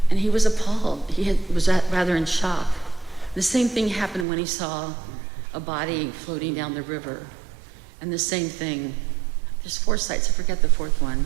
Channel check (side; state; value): left; drops out; at 4.2 s